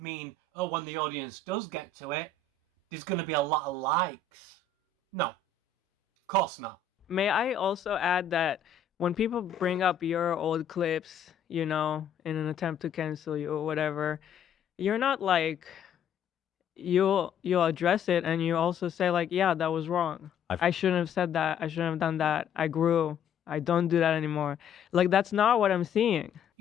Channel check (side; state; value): right; quieter; 6.1 dB